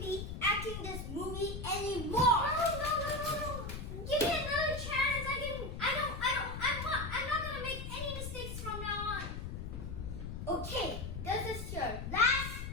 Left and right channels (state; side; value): noise; left; rumble, 6 dB below the sound